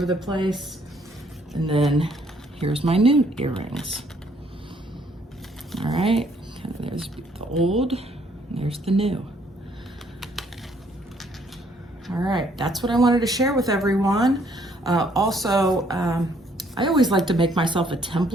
the place. And then here's my new earrings. All right, there's the old, and there's the new. All right, that's what I wanted to share with everyone. Also, I always like to make myself a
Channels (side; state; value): both; normal; correlation 0.66